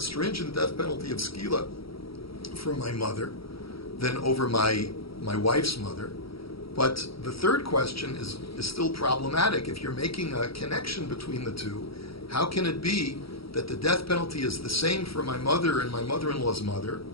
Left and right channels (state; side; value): late; right; 0.75 ms